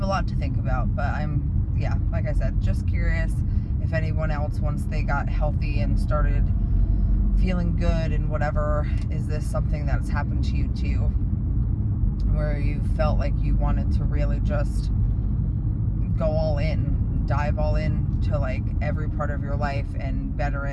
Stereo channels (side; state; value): both; identical; correlation 1.00